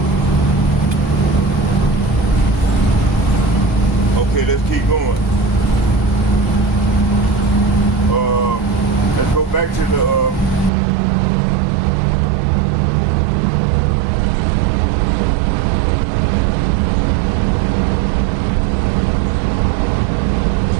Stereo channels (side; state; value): left; drops out; at 10.7 s